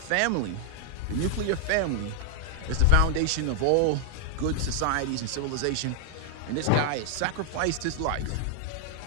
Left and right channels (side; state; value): both; different; correlation 0.00